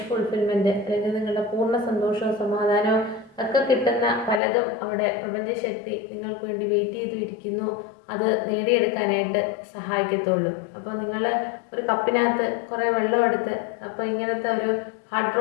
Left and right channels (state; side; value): drops out; right; at 4.4 s